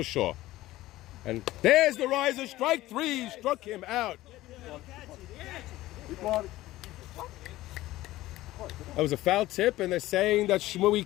sure. And there's the riser, strike three, struck him out. That was a foul tip, and they're saying that Shmooey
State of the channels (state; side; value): quieter; right; 16.6 dB